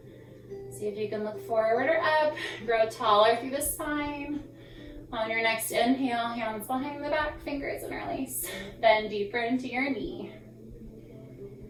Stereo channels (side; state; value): both; identical; correlation 1.00